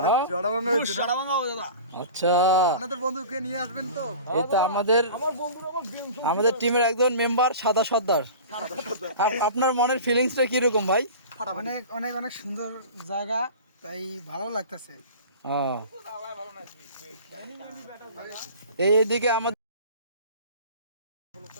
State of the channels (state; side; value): inverted; both; correlation -0.38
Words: না? আচ্ছা আপনাদের বন্ধুকে নিয়ে আসবেন তো? এই তো আমাদের টিমের একজন মেম্বার সাদা সর্দার। আপনার মনের ফিলিংসটা কিরকম ভাই? অনেক অনেক অনেক সুন্দর জায়গা, তাই ভালো লাগতেছে। ও এইদিকে আমাদের